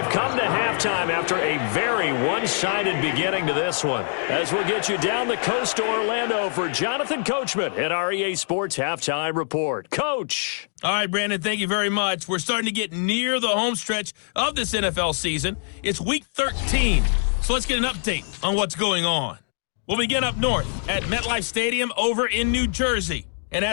come to halftime after a very one-sided beginning to this one. As we'll get you down the coast to Orlando for Jonathan Coachman at our EA Sports Halftime Report. Coach. All right, Brandon, thank you very much. We're starting to get near the home stretch of this NFL season. It's Week 13, so let's get an update on what's going on. We'll begin up north at MetLife Stadium over in New Jersey. And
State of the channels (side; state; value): right; silent; digital silence